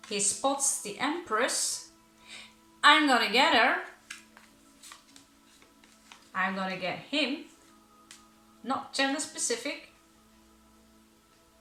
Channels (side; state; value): both; identical; correlation 1.00